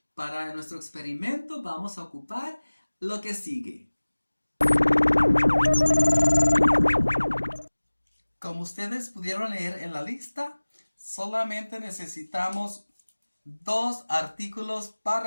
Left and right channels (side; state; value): both; inverted; correlation -1.00